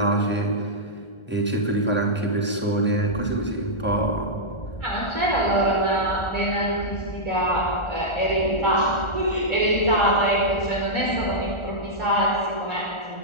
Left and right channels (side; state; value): right; late; 1.4 ms